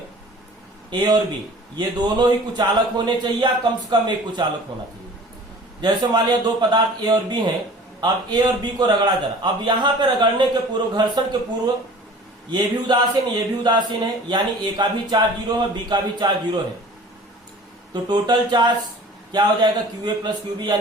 ए और बी, ये दोनों ही कुचालक होने चाहिए या कम से कम एक कुचालक होना चाहिए। जैसे मान लिया दो पदार्थ ए और बी हैं, अब ए और बी को रगड़ा जरा। अब यहाँ पे रगड़ने के पूर्व, घर्षण के पूर्व ये भी उदासीन ये भी उदासीन है, यानी ए का भी चार्ज 0 है, बी का भी चार्ज 0 है, तो टोटल चार्ज क्या हो जाएगा, क्यूए प्लस क्यूबी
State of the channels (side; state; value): both; normal; correlation 0.44